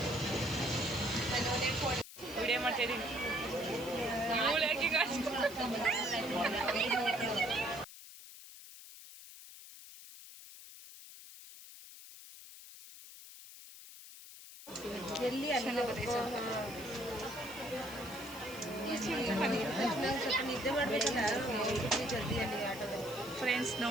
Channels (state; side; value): noise; left; hiss, 15 dB below the sound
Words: ವಿಡಿಯೋ ಮಾಡ್ತಾ ಇದ್ದೀನಿ. ಎಲ್ಲಿ ನಿದ್ದೆ ಮಾಡಬೇಕಲ್ಲ ಜಲ್ದಿಯಲ್ಲಿ ಆಟೋದಲ್ಲಿ. ಫ್ರೆಂಡ್ಸ್